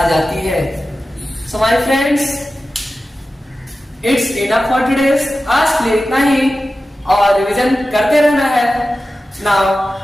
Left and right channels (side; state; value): both; normal; correlation 0.94